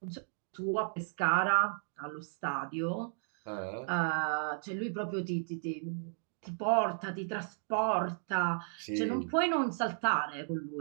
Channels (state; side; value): silent; left; digital silence